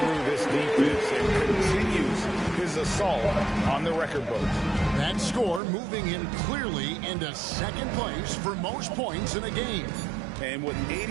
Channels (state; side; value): drops out; left; at 5.6 s